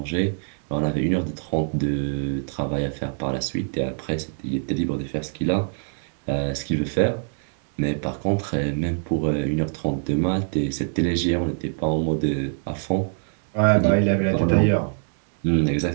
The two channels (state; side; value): silent; left; 62 dB below the other